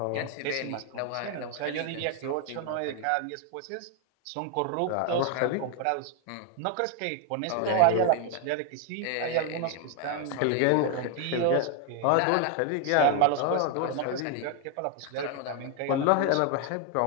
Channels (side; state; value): both; different; correlation 0.01